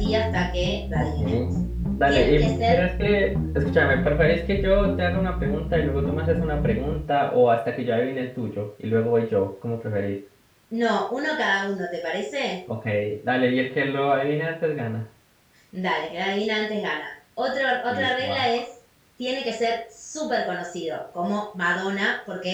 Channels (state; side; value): identical; both; correlation 1.00